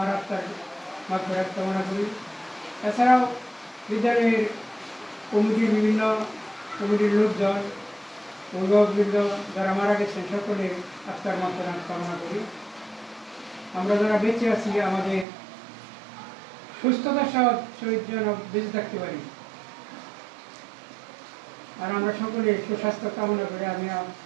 আত্মার মাগফিরাত কামনা করি। এছাড়াও বিদ্যালয়ের কমিটির বিভিন্ন কমিটির লোকজন, অভিভাবকবৃন্দ যারা মারা গেছেন সকলের আত্মার মাগফিরাত কামনা করি। আমরা যারা বেঁচে আছি আমাদের সুস্থতার সহিত যেন বেঁচে থাকতে পারি, আর আমরা সকলে সুস্বাস্থ্য কামনা করে আমি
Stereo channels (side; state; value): left; drops out; at 15.2 s